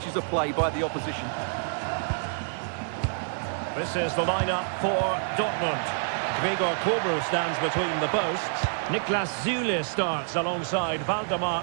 of play by the opposition. This is the lineup for Dortmund. Gregor Kobel stands between the posts. Niklas Süle starts alongside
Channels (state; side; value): silent; left; 60 dB below the other